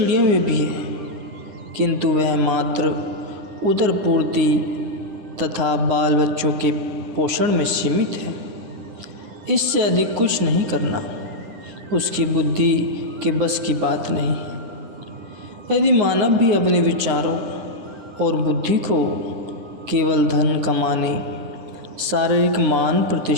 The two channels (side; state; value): left; late; 9.7 ms